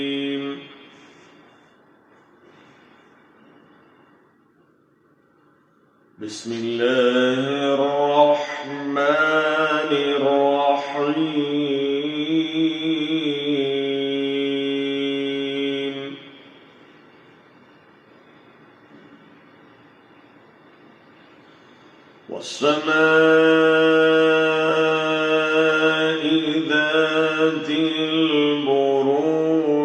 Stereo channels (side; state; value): both; identical; correlation 1.00